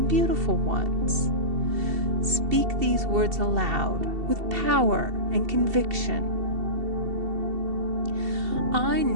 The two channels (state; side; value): late; left; 2.7 ms